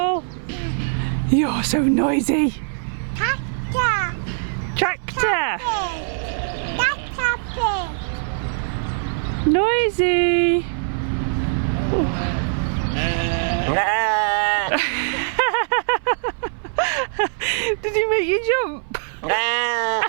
You're so noisy. Tractor. Noisy. Did he make you jump?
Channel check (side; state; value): left; silent; 60 dB below the other